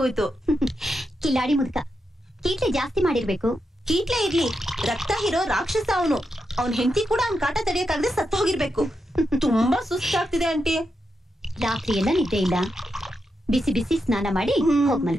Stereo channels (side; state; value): both; normal; correlation 0.85